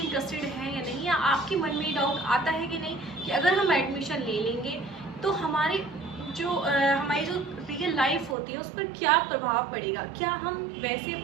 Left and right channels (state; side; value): drops out; left; at 8.3 s